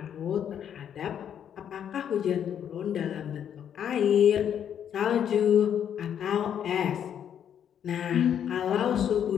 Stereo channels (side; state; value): right; quieter; 9.0 dB